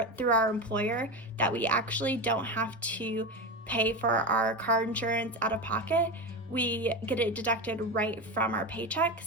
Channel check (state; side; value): normal; both; correlation 0.19